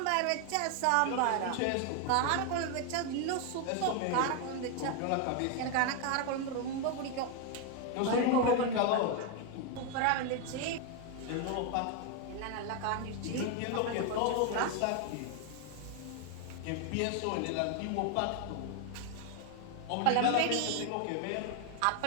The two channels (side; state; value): both; different; correlation 0.01